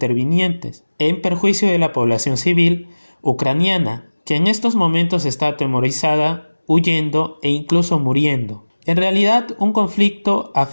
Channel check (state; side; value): inverted; both; correlation -1.00